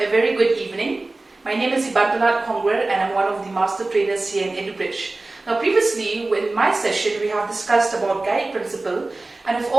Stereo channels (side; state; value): left; quieter; 3.1 dB